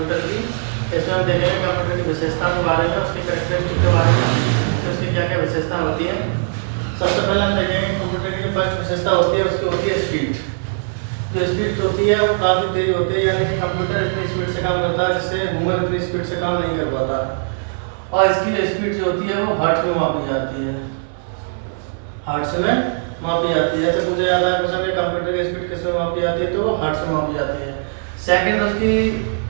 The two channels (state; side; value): silent; left; 66 dB below the other